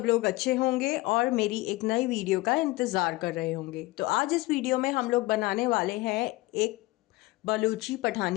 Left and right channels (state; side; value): quieter; right; 20.3 dB